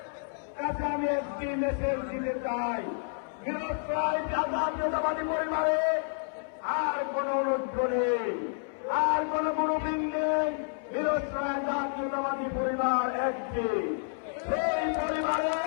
কাছে আমি একটি মেসেজ দিতে চাই। মিরসরাই জাতীয়তাবাদী পরিবারে আর কোন অনুরোধ নেই, আর কোন গ্রুপিং নেই। মিরসরাই জাতীয়তাবাদী পরিবার একটি, সেই পরিবারে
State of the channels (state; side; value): silent; right; 58 dB below the other